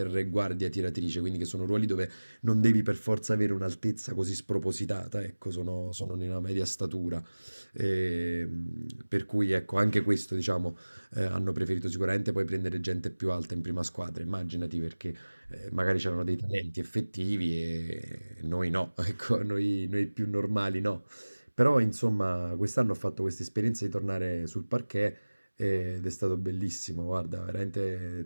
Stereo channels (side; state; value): both; inverted; correlation -1.00